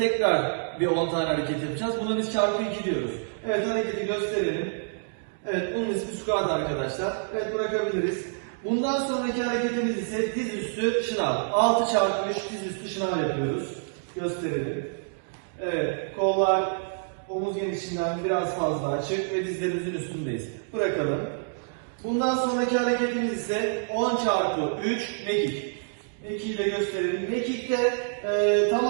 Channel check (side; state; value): left; silent; digital silence